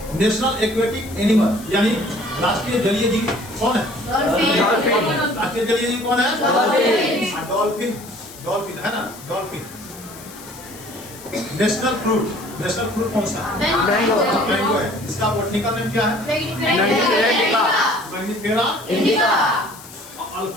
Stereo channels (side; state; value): left; noise; hiss, 18 dB below the sound